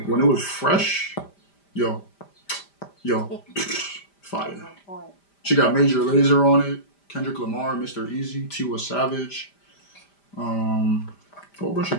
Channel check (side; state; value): right; late; 5.0 ms